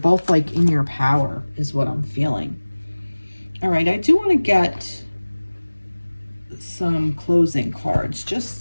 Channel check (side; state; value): both; inverted; correlation -1.00